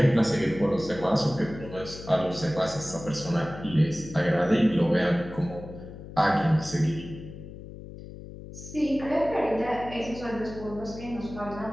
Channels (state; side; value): noise; left; hum, 13 dB below the sound